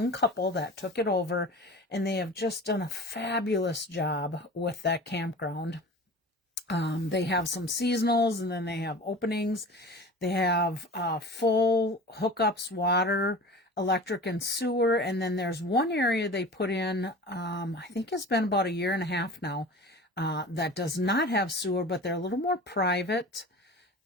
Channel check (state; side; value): normal; both; correlation 0.37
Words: couple that took it over, and they have just done a fabulous job with that campground. They have some seasonals, and then they have openings. They have full hookups, water, electric, and sewer. And then there's one area they put in, I think it's been about 1.5 years now, that does not have sewer, but they're a little more private